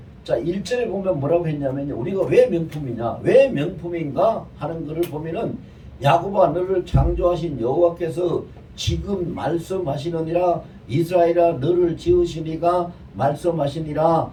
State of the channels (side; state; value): both; identical; correlation 1.00